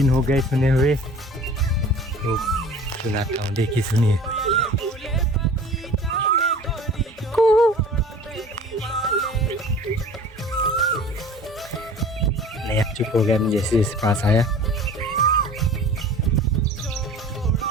हो गए सुने हुए, तो सुनाता हूँ, देखिए सुनिए। नहीं, चुप हो गया मैं जैसे जैसे पास आया।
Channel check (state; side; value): normal; both; correlation 0.44